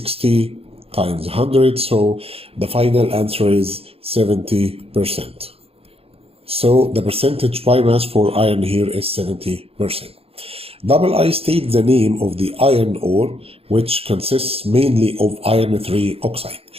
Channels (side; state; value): left; late; 0.28 ms